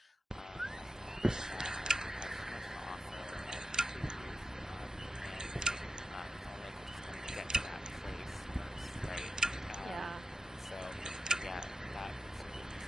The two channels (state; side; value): normal; both; correlation 0.90